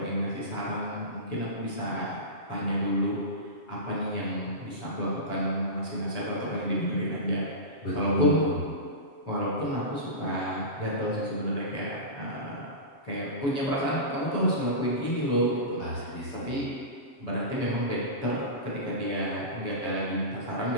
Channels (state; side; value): late; right; 7.4 ms